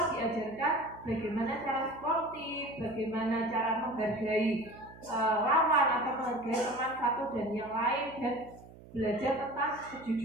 diajarkan bagaimana cara sportif, bagaimana cara menghargai lawan atau menghargai teman satu dan yang lain, dan belajar tentang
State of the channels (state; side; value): noise; right; hum, 19 dB below the sound